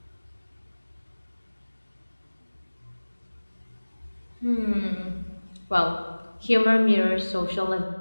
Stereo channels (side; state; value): both; inverted; correlation -1.00